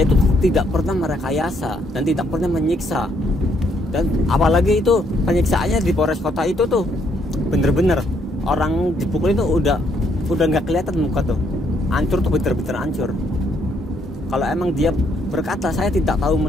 itu tidak pernah merekayasa dan tidak pernah menyiksa. Dan apalagi itu penyiksaannya di Polres Kota itu tuh bener-bener orang dipukul itu udah nggak kelihatan muka tuh, hancur tuh, bener-bener hancur. Kalau emang dia berkata saya tidak tahu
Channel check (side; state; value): both; normal; correlation 0.71